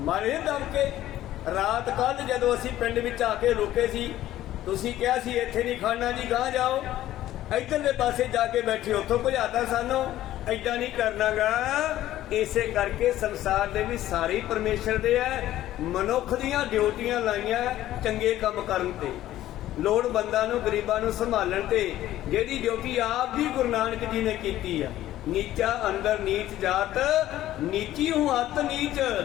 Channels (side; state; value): right; quieter; 13.8 dB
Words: ਮਾਰੇ ਦਮ ਕੇ। ਰਾਤ ਕੱਲ ਜਦੋਂ ਅਸੀਂ ਪਿੰਡ ਵਿੱਚ ਆ ਕੇ ਰੁਕੇ ਸੀ, ਤੁਸੀਂ ਕਿਹਾ ਸੀ ਇੱਥੇ ਨਹੀਂ ਖੜਨਾ ਜੀ, ਗਾਂ ਜਾਓ, ਇੱਧਰਲੇ ਪਾਸੇ ਜਾ ਕੇ ਬੈਠੇ, ਉੱਥੋਂ ਭਜਾਤਾ ਸਾਨੂੰ। ਏਦਾਂ ਨਹੀਂ ਕਰਨਾਗਾ। ਇਸੇ ਕਰਕੇ ਸੰਸਾਰ ਦੇ ਵੀ ਸਾਰੇ ਪਰਮੇਸ਼ਰ ਦੇ ਹੈ। ਮਨੁੱਖ ਦੀਆਂ ਡਿਊਟੀਆਂ ਲਾਈਆਂ ਚੰਗੇ ਕੰਮ ਕਰਨ ਤੇ, ਲੋੜਵੰਦਾਂ ਨੂੰ, ਗਰੀਬਾਂ ਨੂੰ ਸੰਭਾਲਣ ਤੇ। ਜਿਹੜੀ ਡਿਊਟੀ ਆਪ ਵੀ ਗੁਰੂ ਨਾਨਕ ਜੀ ਨੇ ਕੀਤੀ ਆ। ਨੀਚਾ ਅੰਦਰ ਨੀਚ ਜਾਤ, ਨੀਚੀ ਹੂੰ ਅਤ ਨੀਚ,